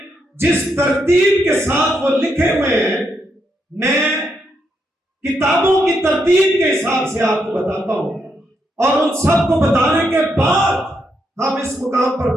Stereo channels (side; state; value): both; normal; correlation 0.79